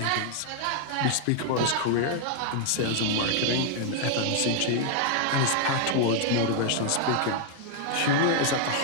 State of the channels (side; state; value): both; different; correlation 0.00